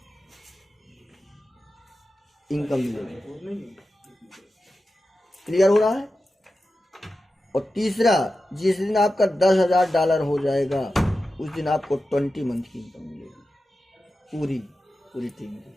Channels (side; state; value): both; normal; correlation 0.92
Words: इनकम मिलेगी। क्लियर हो रहा है। और तीसरा जिस दिन आपका $10,000 हो जाएगा उस दिन आपको 20 मंथ की इनकम मिलेगी पूरी टीम की।